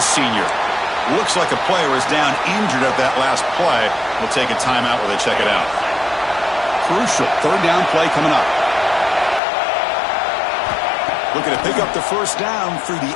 senior. Looks like a player is down injured at that last play. We'll take a timeout while they check it out. Crucial third down play coming up. Looking to pick up the first down through the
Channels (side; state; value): right; drops out; at 9.4 s